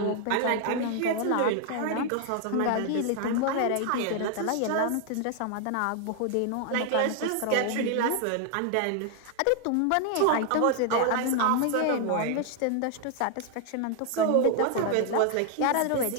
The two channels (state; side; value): different; both; correlation 0.00